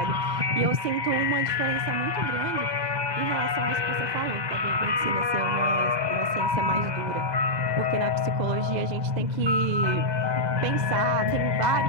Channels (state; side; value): late; left; 2.0 ms